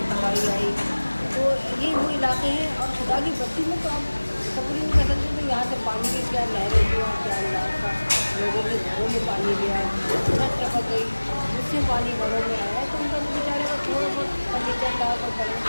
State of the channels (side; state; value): both; inverted; correlation -1.00